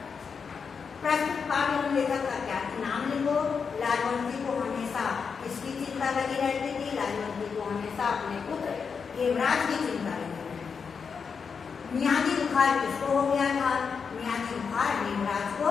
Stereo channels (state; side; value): quieter; right; 5.9 dB